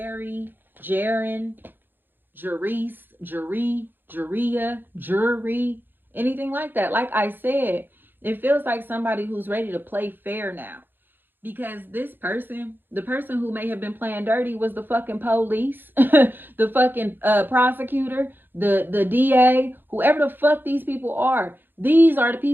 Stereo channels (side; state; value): left; late; 0.096 ms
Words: Jaren, Jerice, Jeria, Jury, anything like that. Like I said, It feels like somebody who's ready to play fair now. Because this person, the person who may have been playing dirty was the fucking police, the fucking prosecutor, the DA, whoever the fuck these people are. These are the